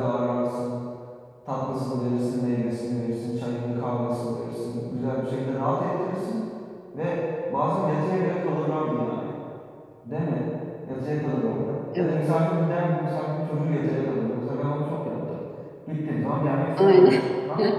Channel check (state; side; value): identical; both; correlation 1.00